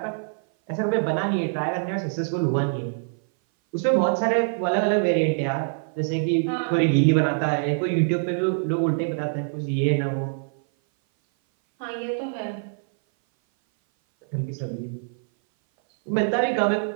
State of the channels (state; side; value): silent; left; 58 dB below the other